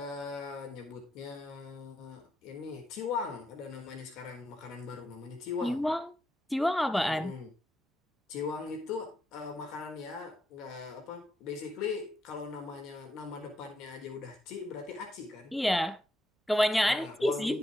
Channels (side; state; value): both; normal; correlation 0.82